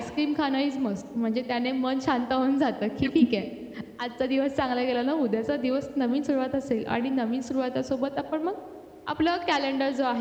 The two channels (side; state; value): both; identical; correlation 1.00